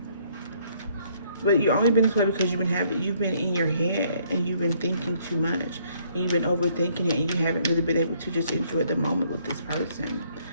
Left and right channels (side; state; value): both; inverted; correlation -0.65